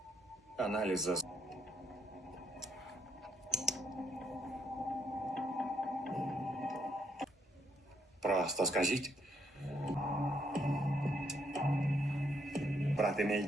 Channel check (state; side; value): normal; both; correlation 0.73